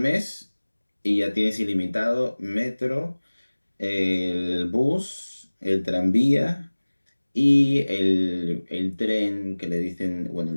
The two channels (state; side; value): inverted; both; correlation -1.00